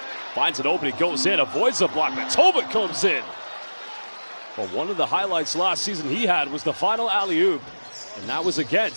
Finds an opening, goes in, avoids the block, but Tolbert comes in. Well, one of the highlights last season he had was the final alley-oop, and that was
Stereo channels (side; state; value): both; inverted; correlation -1.00